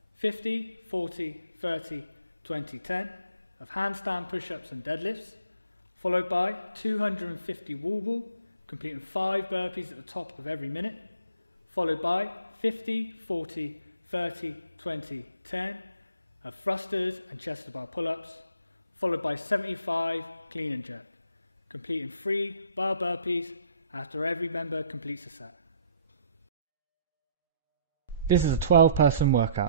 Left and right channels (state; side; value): inverted; both; correlation -0.62